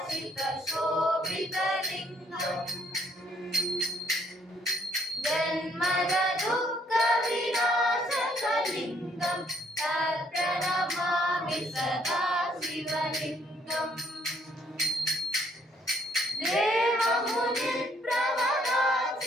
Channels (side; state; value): both; normal; correlation 0.67